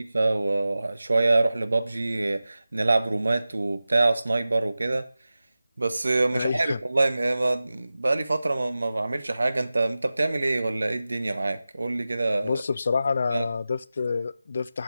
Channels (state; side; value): inverted; both; correlation -0.95